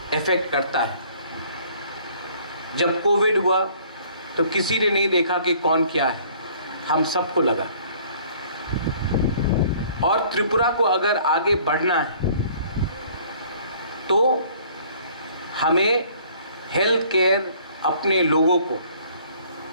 इफेक्ट करता है। जब कोविड हुआ तो किसी ने नहीं देखा कि कौन क्या है, हम सबको लगा। और त्रिपुरा को अगर आगे बढ़ना है तो हमें हेल्थ केयर अपने लोगों को,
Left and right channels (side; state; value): both; inverted; correlation -0.56